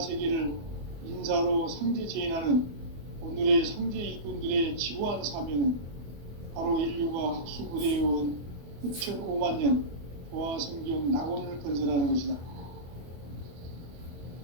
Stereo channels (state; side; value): late; left; 24 ms